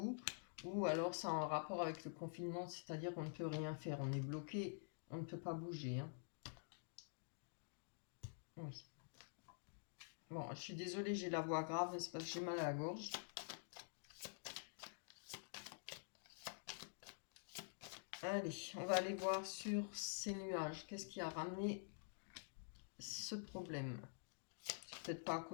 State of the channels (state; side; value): silent; right; digital silence